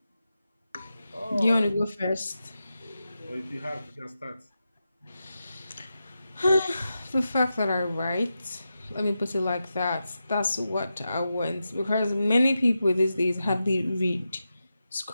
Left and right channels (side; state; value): both; inverted; correlation -0.90